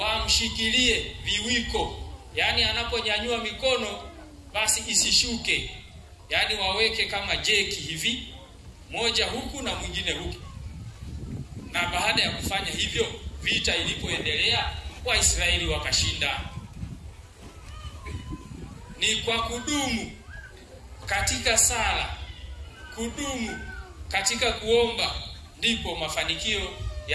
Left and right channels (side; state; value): both; identical; correlation 1.00